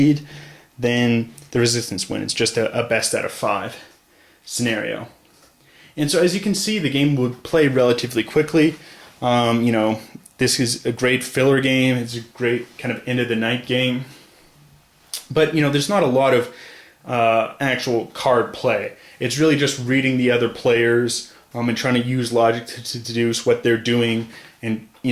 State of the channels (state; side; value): identical; both; correlation 1.00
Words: then the Resistance win. It's just a best out of 5 scenario. And so as you can see, the game would play relatively quickly. This is a great filler game. It's a great kind of end of the night game. But there's not a lot of actual card play. It's really just reading the other players and trying to use logic to deduce what they're doing. And